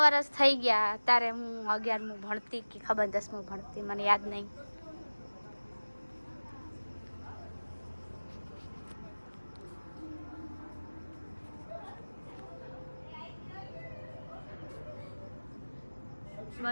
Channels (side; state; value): both; inverted; correlation -1.00